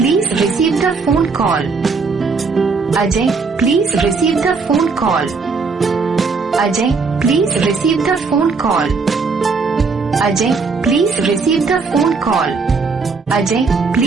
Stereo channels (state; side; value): quieter; left; 4.6 dB